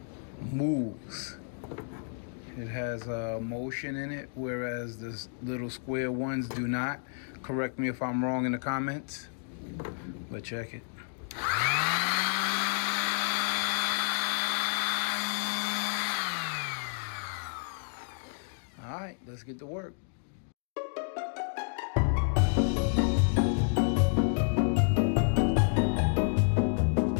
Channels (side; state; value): right; silent; digital silence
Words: moves. It has motion in it, whereas the little square ones do not. Correct me if I'm wrong in the comments, but check it. All right, let's get to work.